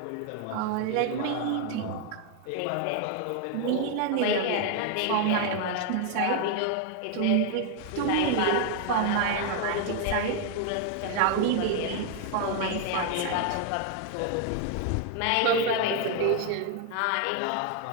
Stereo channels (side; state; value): both; different; correlation 0.01